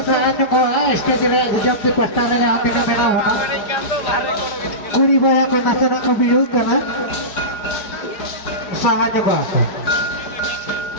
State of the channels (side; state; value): right; late; 4.9 ms